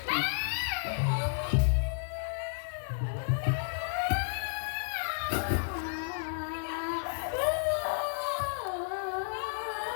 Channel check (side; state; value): right; silent; digital silence